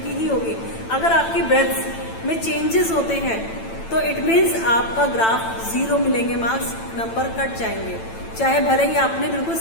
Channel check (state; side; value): late; right; 9.0 ms